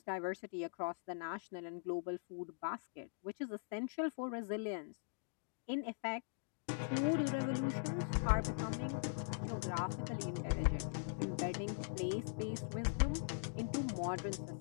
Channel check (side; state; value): right; silent; digital silence